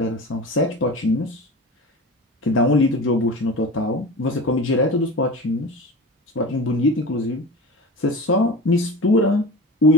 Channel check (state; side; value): normal; both; correlation 0.33